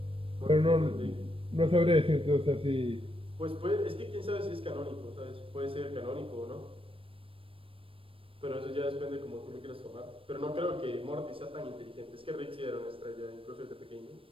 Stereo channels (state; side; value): late; left; 0.26 ms